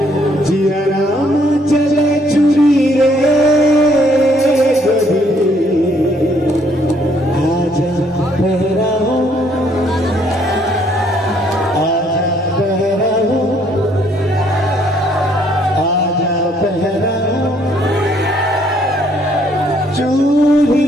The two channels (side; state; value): both; normal; correlation 0.66